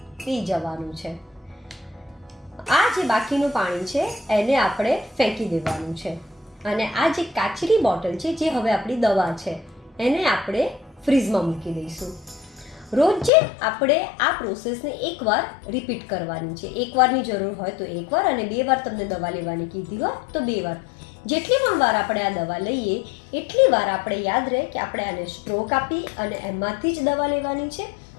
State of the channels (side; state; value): right; drops out; at 13.3 s